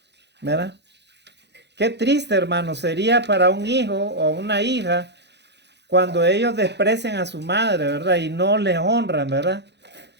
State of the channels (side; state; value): left; late; 0.50 ms